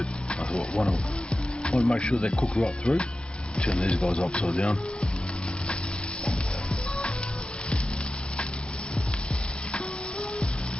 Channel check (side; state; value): right; late; 0.055 ms